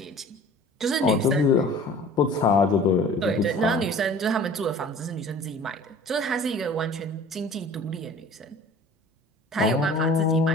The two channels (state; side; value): normal; both; correlation 0.45